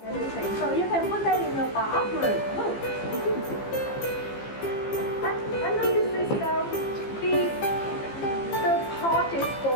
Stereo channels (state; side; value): late; right; 15 ms